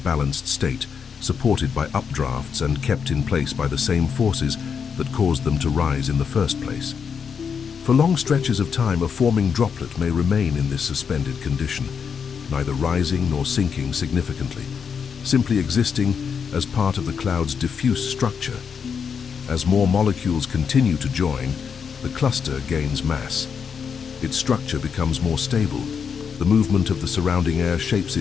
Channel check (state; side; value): quieter; right; 6.6 dB